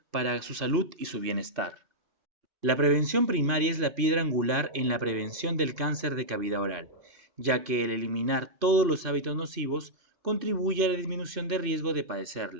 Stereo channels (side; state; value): left; late; 2.5 ms